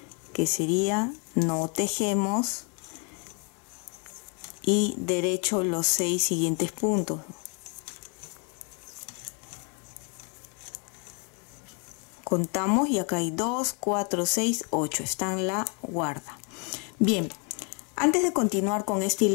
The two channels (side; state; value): right; quieter; 36.1 dB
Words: que sería no tejemos y derecho los 6 siguientes puntos. Contamos y acá hay 2, 4, 6, 8, está en la guarda. Bien, antes de continuar con esta